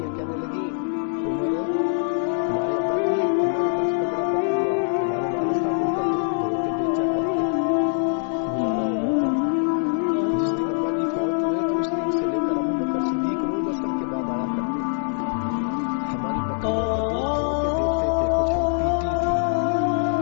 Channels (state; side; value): silent; right; digital silence